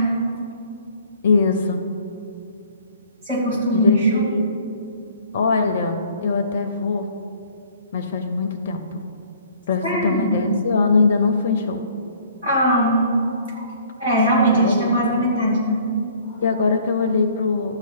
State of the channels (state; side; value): inverted; both; correlation -0.56